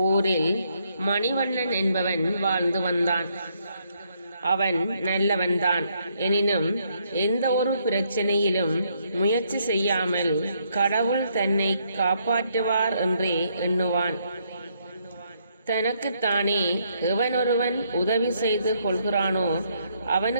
மணிவண்ணன் என்பவன் வாழ்ந்து வந்தான். அவன் நல்லவன்தான். எனினும் எந்த ஒரு பிரச்சனையிலும் முயற்சி செய்யாமல் கடவுள் தன்னை காப்பாற்றுவார் என்றே எண்ணுவான். தனக்குத்தானே எவனொருவன் உதவி செய்து கொள்கிறானோ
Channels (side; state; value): both; inverted; correlation -0.73